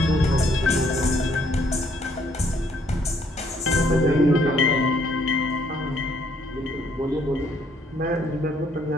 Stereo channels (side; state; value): both; normal; correlation 0.67